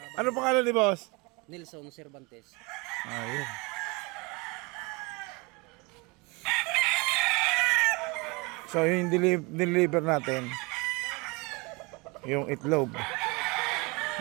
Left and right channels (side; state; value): left; quieter; 26.4 dB